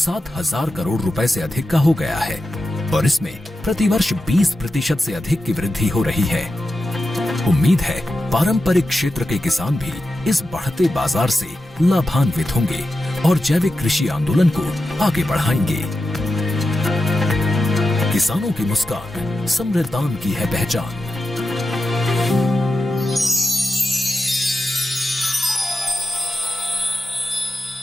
करोड़ रुपए से अधिक का हो गया है और इसमें प्रतिवर्ष 20% से अधिक की वृद्धि हो रही है। उम्मीद है पारंपरिक क्षेत्र के किसान भी इस बढ़ते बाजार से लाभान्वित होंगे और जैविक कृषि आंदोलन को आगे बढ़ाएंगे। किसानों की मुस्कान समृद्धान की है पहचान।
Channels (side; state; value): both; normal; correlation 0.91